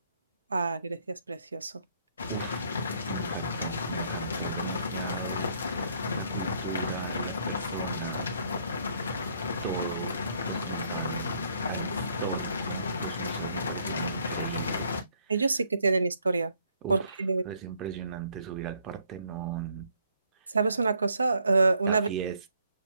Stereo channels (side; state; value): both; inverted; correlation -0.67